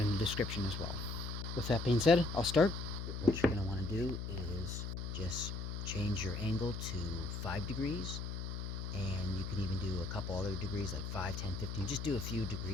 in the description as well. With that being said, I'll start. What you're going to want to do is just change your angle to 5 degrees, and you can even do a couple other degrees like 5, 10, 15. Just do a few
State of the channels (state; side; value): noise; left; hum, 5 dB below the sound